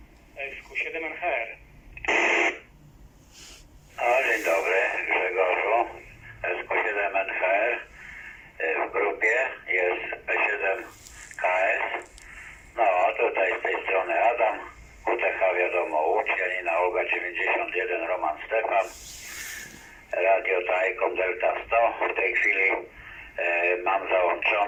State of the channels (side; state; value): both; identical; correlation 1.00